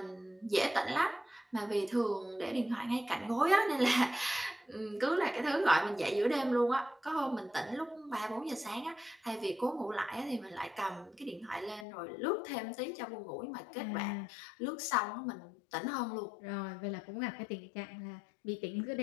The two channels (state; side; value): drops out; right; at 11.9 s